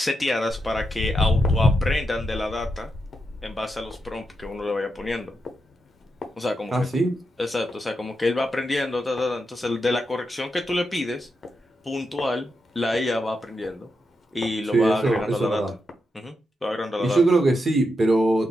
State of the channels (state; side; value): normal; both; correlation 0.85